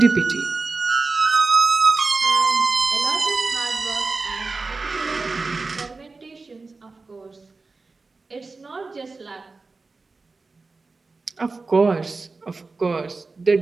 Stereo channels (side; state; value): left; quieter; 3.9 dB